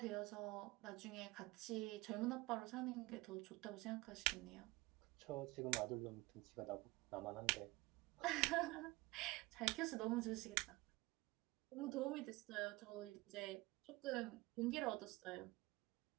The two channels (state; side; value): quieter; left; 21.7 dB